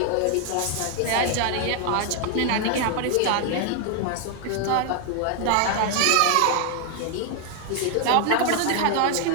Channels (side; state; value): both; different; correlation 0.00